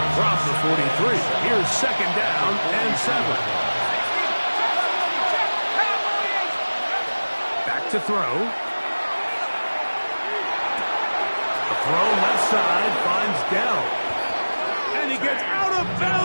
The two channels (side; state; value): both; inverted; correlation -1.00